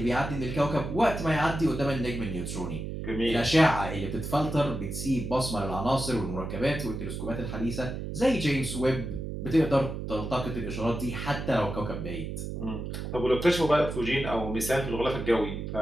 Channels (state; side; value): noise; right; hum, 6 dB below the sound